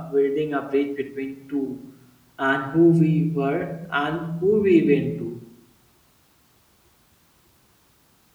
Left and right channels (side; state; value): both; identical; correlation 1.00